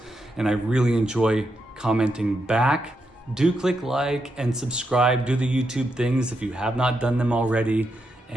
and I really enjoy commenting back. Do click like and subscribe. Do the YouTube things if you have not done them already.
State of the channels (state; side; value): normal; both; correlation 0.83